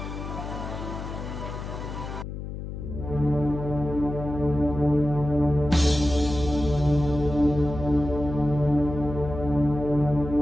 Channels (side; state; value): left; noise; hum, 8 dB below the sound